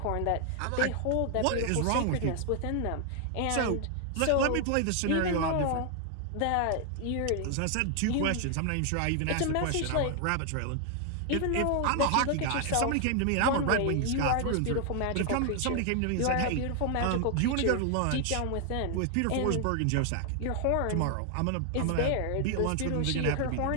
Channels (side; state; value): both; different; correlation 0.00